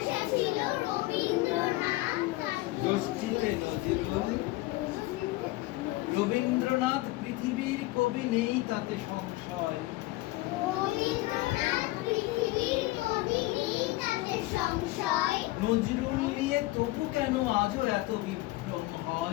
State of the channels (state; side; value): quieter; right; 19.2 dB